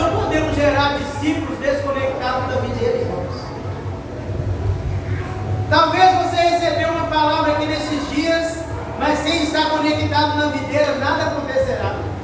podemos gerar discípulos desconectados da videira, irmãos. Talvez você recebeu uma palavra aqui nesses dias, mas sem estar conectado na videira, nada acontecerá.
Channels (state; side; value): identical; both; correlation 1.00